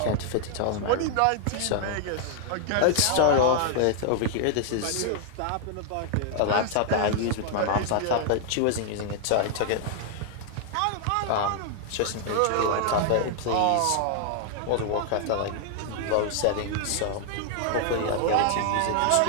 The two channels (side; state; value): both; different; correlation 0.00